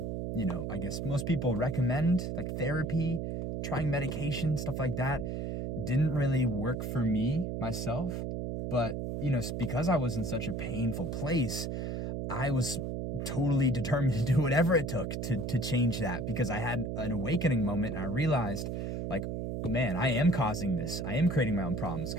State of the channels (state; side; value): noise; right; hum, 3 dB below the sound